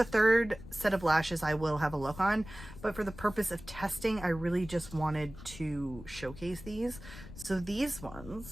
third set of lashes, I will have a look on, but for the purpose of testing, I really just wanted to showcase these. So these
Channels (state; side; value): noise; left; rumble, 15 dB below the sound